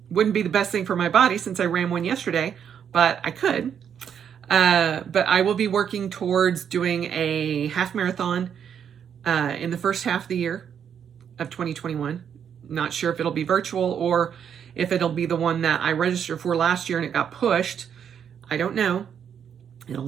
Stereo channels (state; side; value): quieter; left; 8.2 dB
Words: Wouldn't be the best thing for my body since I ran one yesterday, but I could. But I will be working towards doing a half marathon in the first half of the year of 2021. Not sure if it'll be virtual or if it'll be the one that I registered for last year and it got pushed. I don't know. It'll